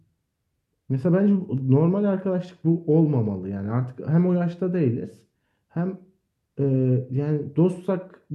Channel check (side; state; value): both; identical; correlation 1.00